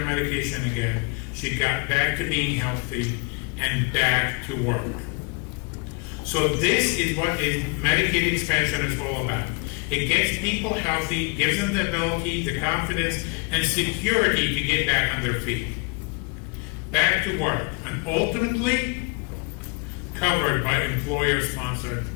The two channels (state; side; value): quieter; right; 32.8 dB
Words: again. She got back to being healthy and back to work. So this is what Medicaid expansion is all about. It gets people healthy, gives them the ability, the confidence, and security to get back on their feet. Back to work, and ultimately covered by employer-sponsored